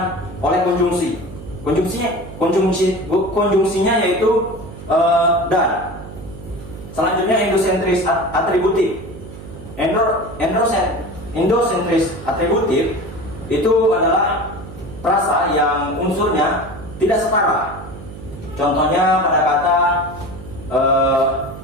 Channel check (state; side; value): noise; right; hum, 14 dB below the sound